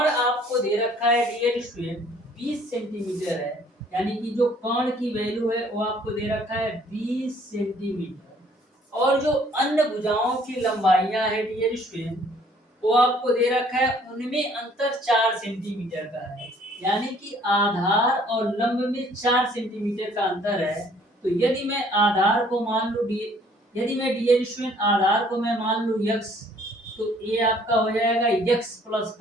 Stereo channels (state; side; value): normal; both; correlation 0.59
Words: आपको दे रखा है डियर स्टूडेंट 20 सेंटीमीटर है। यानी कि जो कोण की वैल्यू है वो आपको दे रखा है 20 सेंटीमीटर। और जो अन्य भुजाओं की लंबाइयां है डियर स्टूडेंट वो आपको दे रखा है, उनमें अंतर 4 सेंटीमीटर का है। यानी कि आधार और लंब में 4 सेंटीमीटर का अंतर है। तो यदि मैं आधार को मान लूं यदि मैं डियर स्टूडेंट आधार को मैं मान लूं x, तो ये आपका हो जाएगा x प्लस